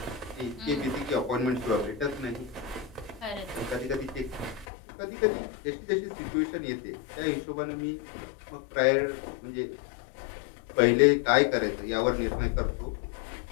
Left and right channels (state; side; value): drops out; right; at 4.7 s